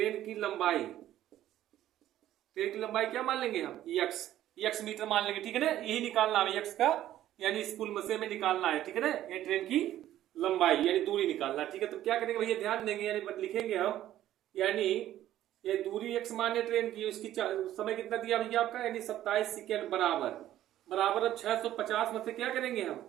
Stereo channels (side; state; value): left; quieter; 12.9 dB